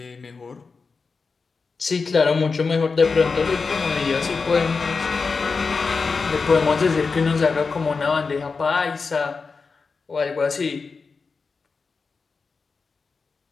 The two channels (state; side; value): quieter; right; 4.7 dB